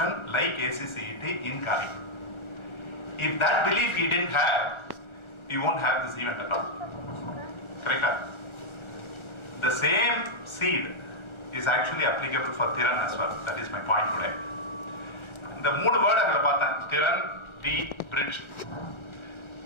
like ACCET in Calicut. If that belief he didn't have, he won't have this event at all. Correct? The same seed is actually applicable for Thiran as well. That is my point today. The மூணு word அங்க பார்த்தேன். Thiran, the bridge.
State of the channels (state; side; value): late; right; 1.3 ms